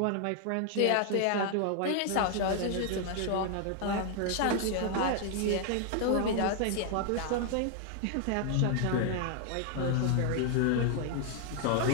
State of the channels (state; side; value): different; both; correlation 0.00